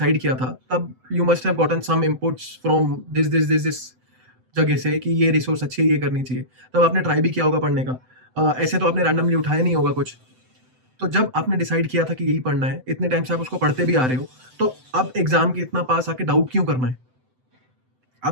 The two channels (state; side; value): late; left; 7.8 ms